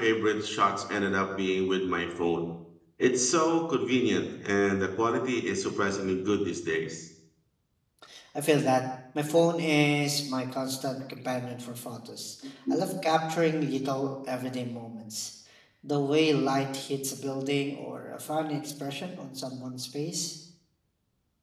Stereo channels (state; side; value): identical; both; correlation 1.00